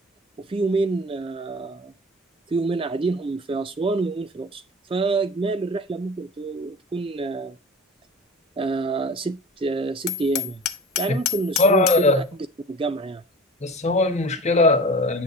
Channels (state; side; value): normal; both; correlation 0.38